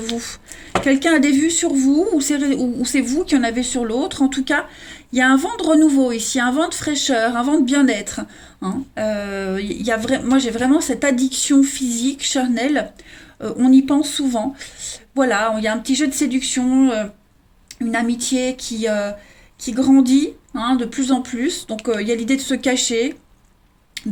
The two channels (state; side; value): identical; both; correlation 1.00